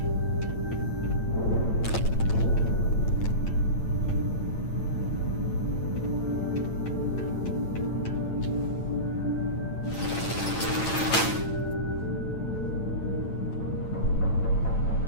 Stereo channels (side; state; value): right; late; 8.9 ms